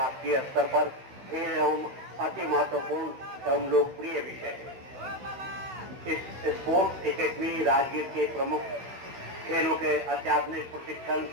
स्तर पर खेल एवं अति महत्वपूर्ण एवं लोकप्रिय विषय है। इस स्पोर्ट्स एकेडमी राजगीर के प्रमुख खेलों के अत्याधुनिक प्रशिक्षण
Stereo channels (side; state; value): left; late; 15 ms